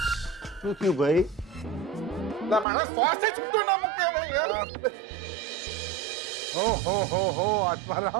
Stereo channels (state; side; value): drops out; left; at 2.7 s